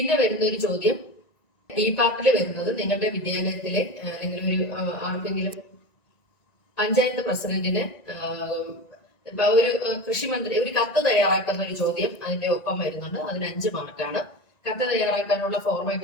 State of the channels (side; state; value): right; late; 1.9 ms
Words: വരുന്ന ഒരു ചോദ്യം B പാർട്ടിൽ വരുന്നത് നിങ്ങളുടെ വിദ്യാലയത്തിലെ അല്ലെങ്കിൽ ഒരു ആർക്കെങ്കിലും പഞ്ചായത്ത് പ്രസിഡന്റിന് ഒരു കൃഷിമന്ത്രി ഒരു കത്ത് തയ്യാറാക്കുന്ന ഒരു ചോദ്യം അതിന്റെ ഒപ്പം വരുന്നുണ്ട്. അതിന് 5 മാർക്കാണ്. കത്ത് തയ്യാറാക്കാനുള്ള